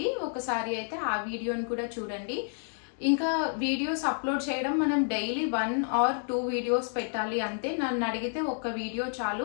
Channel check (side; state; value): right; silent; digital silence